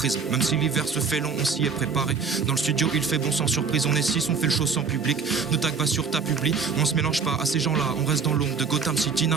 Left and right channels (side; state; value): left; quieter; 5.5 dB